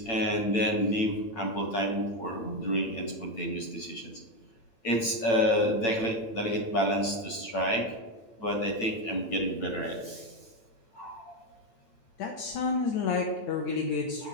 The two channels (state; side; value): late; right; 8.8 ms